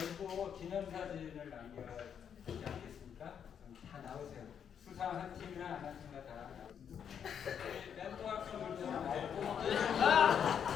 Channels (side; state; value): right; quieter; 8.0 dB